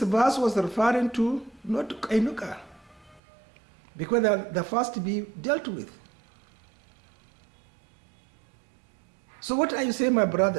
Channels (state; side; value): drops out; left; at 3.2 s